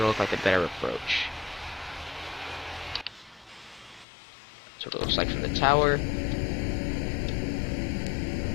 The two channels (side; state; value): right; drops out; at 4.0 s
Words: look like a better approach. That's what it looks like from the tower.